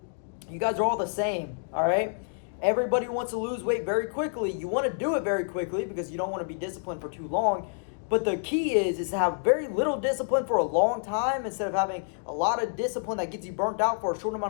You guys are all the same, all right? Everybody wants to lose weight very quickly. You want to do it very quickly because you don't want to be disciplined for too long. But the key is to have very little discipline for a long time instead of having a lot of discipline that gets you burnt out for a short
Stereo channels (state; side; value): silent; right; digital silence